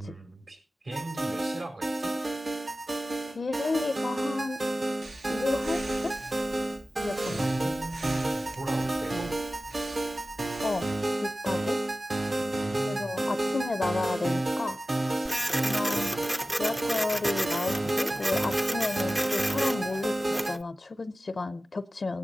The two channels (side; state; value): both; normal; correlation 0.96